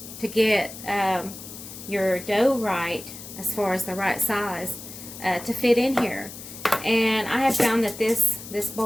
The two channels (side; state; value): left; noise; hiss, 13 dB below the sound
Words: to get your dough right, as far as the right size to fit in here. And I have found that this